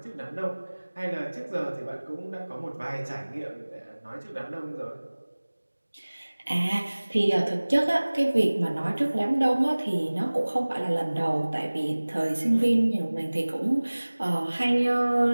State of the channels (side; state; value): both; inverted; correlation -1.00